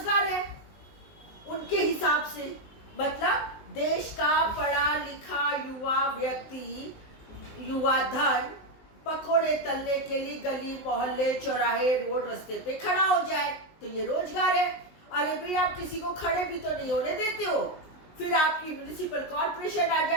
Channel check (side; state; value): right; late; 19 ms